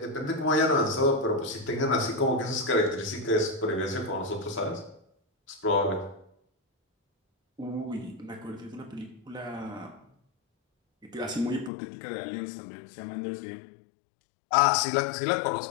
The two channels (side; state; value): right; drops out; at 11.7 s